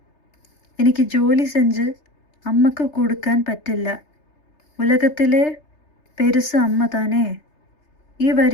എനിക്ക് ജോലി സെഞ്ച് അമ്മക്ക് കൊടുക്കാൻ പറ്റില്ല, ഉലകത്തിലെ പെരുസ് അമ്മ താനേ. ഈ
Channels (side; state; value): right; late; 3.3 ms